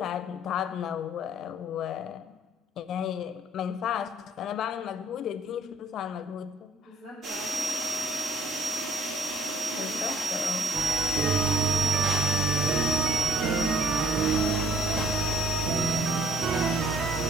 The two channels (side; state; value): both; normal; correlation 0.57